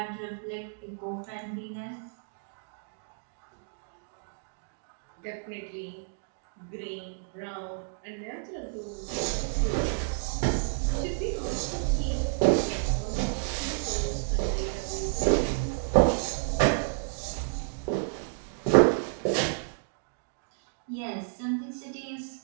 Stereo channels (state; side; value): silent; left; digital silence